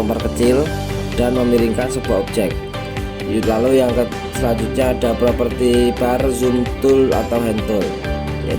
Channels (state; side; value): identical; both; correlation 1.00